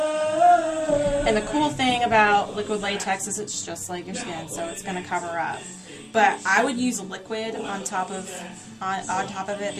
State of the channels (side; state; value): both; identical; correlation 1.00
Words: And the cool thing about liquid latex is it's just like your skin, so it's going to cover up. But I would use liquid on top of it